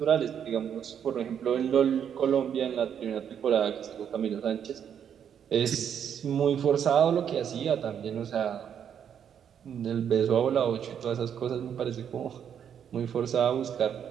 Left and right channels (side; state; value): left; quieter; 8.5 dB